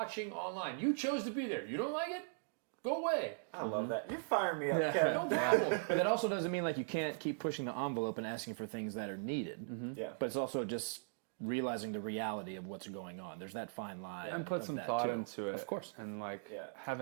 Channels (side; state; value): left; silent; digital silence